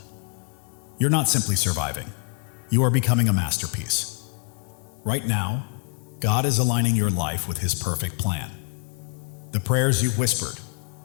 You're not simply surviving, you are becoming a masterpiece. Right now, God is aligning your life with His perfect plan. The prayers you've whispered,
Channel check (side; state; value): right; quieter; 36.3 dB